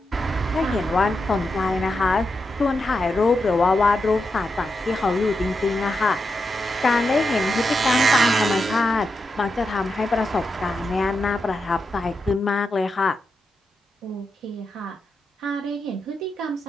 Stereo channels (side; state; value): both; normal; correlation 0.86